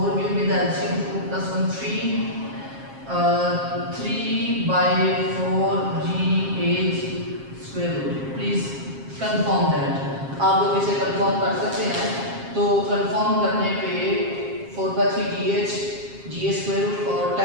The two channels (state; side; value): late; left; 7.4 ms